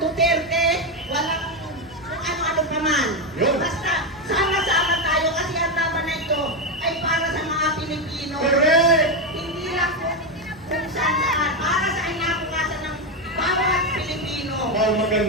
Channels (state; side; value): normal; both; correlation 0.09